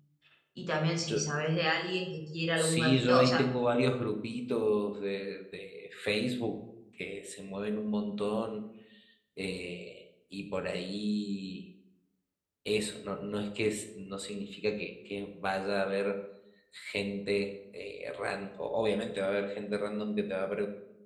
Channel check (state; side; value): identical; both; correlation 1.00